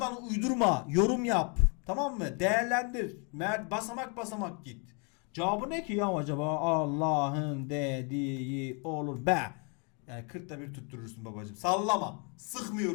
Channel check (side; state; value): right; quieter; 35.7 dB